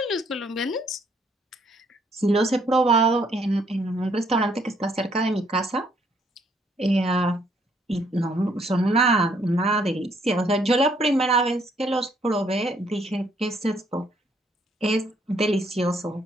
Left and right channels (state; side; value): normal; both; correlation 0.68